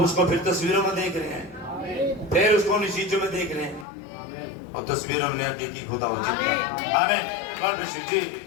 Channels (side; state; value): right; drops out; at 3.9 s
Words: फिर तस्वीरों में देख रहे हैं, फिर उसको उन चीजों में देख रहे हैं, और तस्वीरों में हकीकी खुदा हो जिंदा। आमीन। गॉड ब्लेस यू जी।